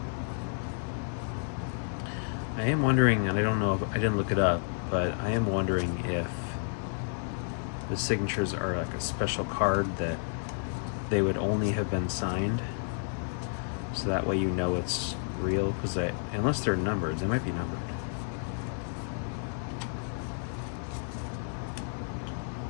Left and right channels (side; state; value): right; silent; digital silence